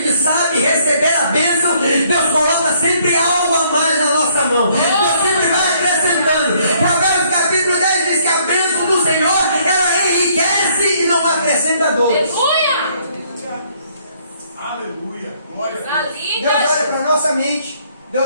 sabe receber a bênção, Deus coloca sempre algo a mais na nossa mão. Deus sempre vai acrescentando. Provérbios capítulo 10 diz que a bênção do Senhor, ela enriquece e não acrescenta dores. Aleluia! Aleluia. Glória a Coisa Deus. linda! Deus olha para a nossa mente,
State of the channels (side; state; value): both; inverted; correlation -0.65